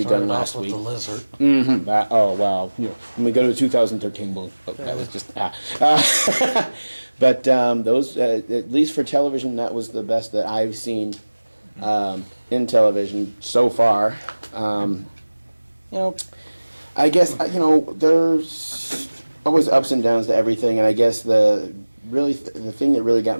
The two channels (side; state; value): both; inverted; correlation -1.00